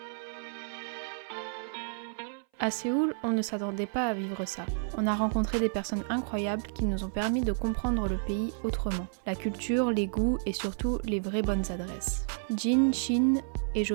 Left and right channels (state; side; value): silent; left; 57 dB below the other